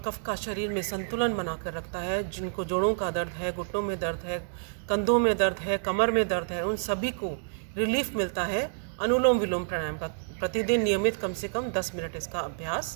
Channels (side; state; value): left; silent; digital silence